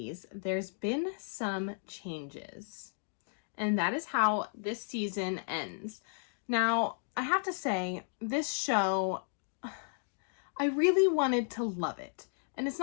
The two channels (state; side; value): silent; right; digital silence